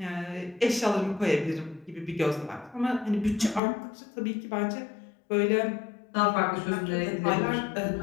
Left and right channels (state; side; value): drops out; right; at 3.6 s